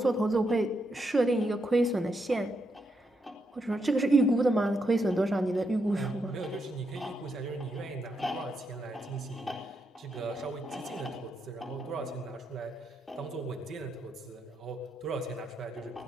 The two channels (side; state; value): both; normal; correlation 0.81